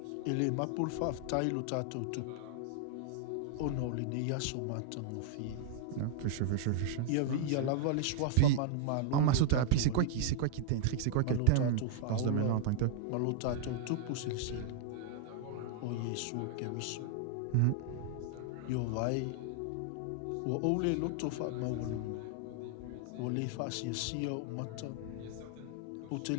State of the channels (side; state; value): both; different; correlation 0.00